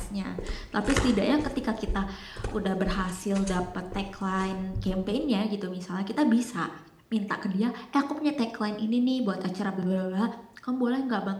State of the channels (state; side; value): identical; both; correlation 1.00